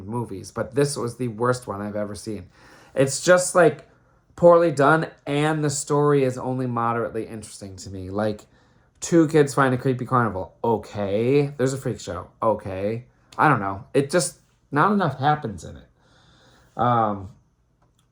movies, but this was the worst one I've ever seen. It's just like poorly done, and the story is only moderately interesting to me. Like, two kids find a creepy carnival. Okay. There's a freak show. Okay. I don't know. It just, not enough happens in it.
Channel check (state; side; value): identical; both; correlation 1.00